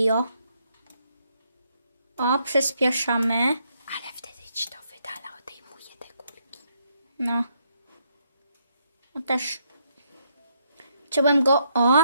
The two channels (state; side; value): inverted; both; correlation -0.75